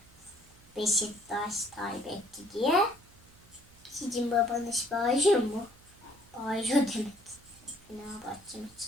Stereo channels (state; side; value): noise; right; hum, 26 dB below the sound